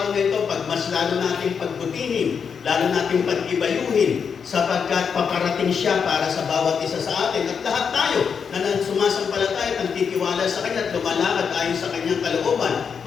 na ito, mas lalo natin pagbutihin, lalo natin pag-ibayuhin, sapagkat paparating siya para sa bawat isa sa atin. At lahat tayo na sumasampalataya at nagtitiwala sa Kanya at lumalakad ayon sa Kanyang kalooban.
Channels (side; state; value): right; quieter; 6.5 dB